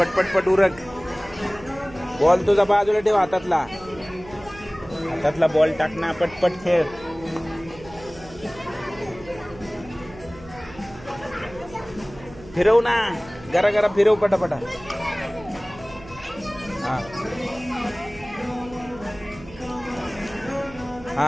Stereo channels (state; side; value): noise; right; hum, 18 dB below the sound